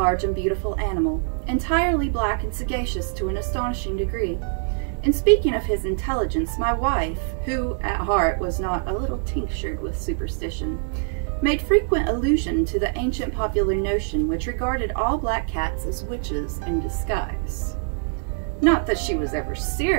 and beautiful animal, entirely black and sagacious to an astonishing degree. In speaking of his intelligence, my wife, who at heart was not a little tinctured with superstition, made frequent allusion to the ancient popular notion which regarded all black cats as witches in disguise. Not that she was ever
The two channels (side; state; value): left; silent; 63 dB below the other